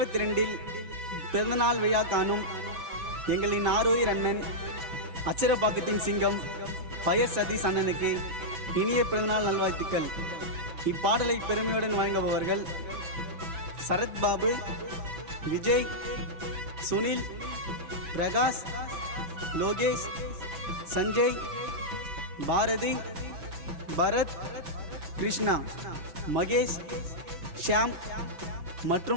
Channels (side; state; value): left; late; 6.0 ms